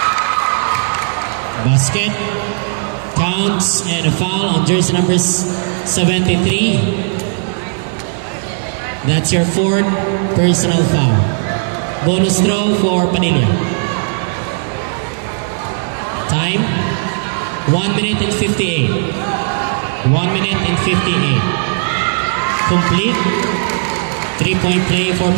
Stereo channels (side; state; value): left; silent; 69 dB below the other